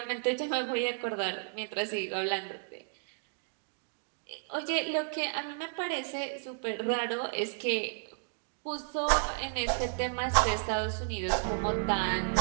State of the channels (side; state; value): left; silent; digital silence